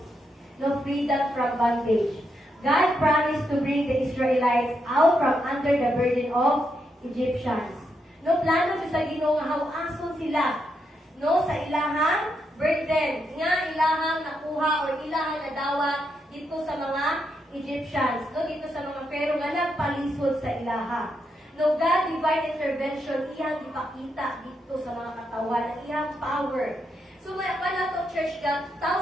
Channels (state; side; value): normal; both; correlation 0.81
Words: No, freedom from bondage. God promised to bring the Israelites out from under the burden of Egyptians. No, plano sa Ginoo nga hawason sila no sa ilahang burden nga ilahang nakuha o ilahang nadawa dito sa mga Egyptians, no, dito sa mga Pharaoh nga nagpalisod sa ilaha. No, God divine intervention iyang ipakita dito sa mga katawan ng iyang power. So may pala to church God